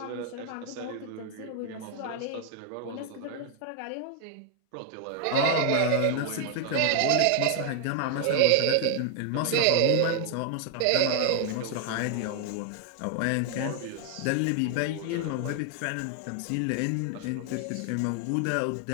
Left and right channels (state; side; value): different; both; correlation 0.00